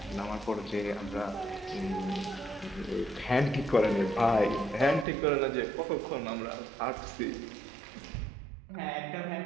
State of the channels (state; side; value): drops out; left; at 5.1 s